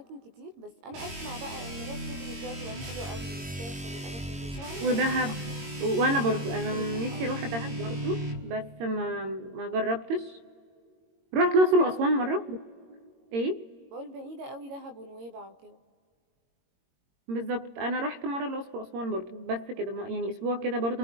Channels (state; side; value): late; left; 22 ms